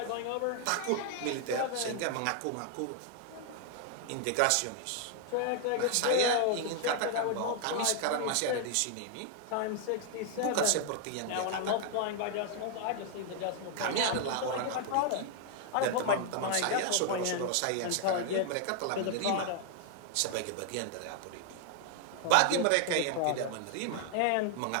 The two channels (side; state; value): both; different; correlation 0.00